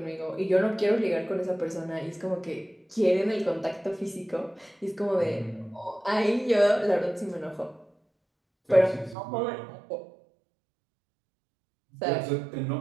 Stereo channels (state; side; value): drops out; left; at 9.2 s